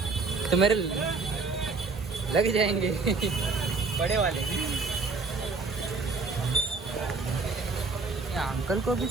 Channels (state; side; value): quieter; left; 4.1 dB